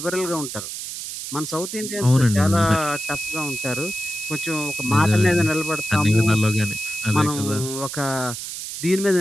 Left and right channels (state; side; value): noise; right; hiss, 7 dB below the sound